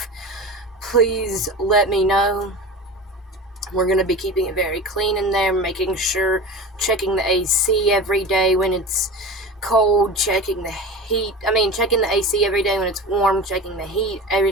please let me know. We're going to be keeping it very clean in there, making sure, checking the AC every day when it's cold, checking the AC every day when it's warm, checking the heat every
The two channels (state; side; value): normal; both; correlation 0.31